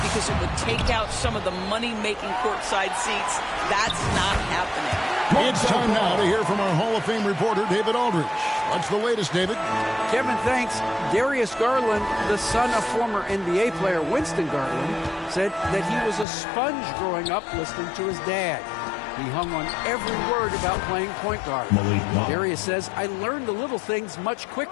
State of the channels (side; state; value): right; drops out; at 16.2 s